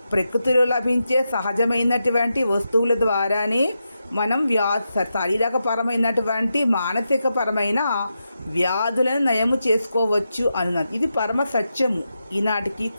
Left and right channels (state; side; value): inverted; both; correlation -0.87